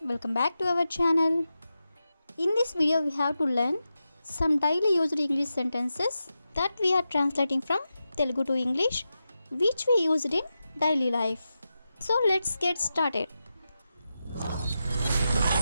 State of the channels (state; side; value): inverted; both; correlation -0.90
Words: welcome back to our channel. In this video we have to learn some daily used English sentences that we are translating from Telugu to English which we used in daily life. So let's get started.